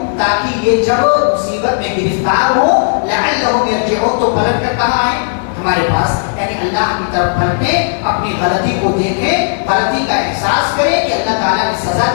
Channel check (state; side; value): silent; right; digital silence